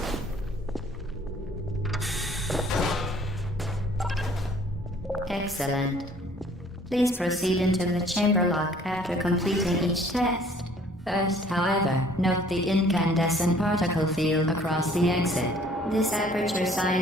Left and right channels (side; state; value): both; normal; correlation 0.56